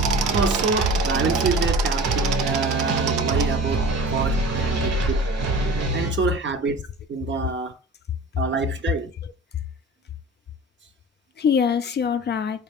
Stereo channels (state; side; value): normal; both; correlation 0.38